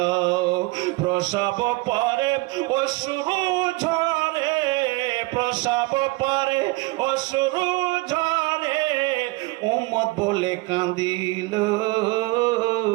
প্রসব পরে অশ্রু ঝরে প্রসব পরে অশ্রু ঝরে উম্মত বলে কাঁদিল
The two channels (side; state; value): left; quieter; 23.3 dB